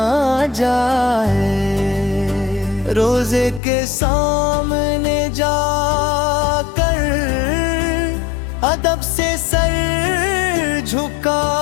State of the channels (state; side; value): drops out; right; at 3.6 s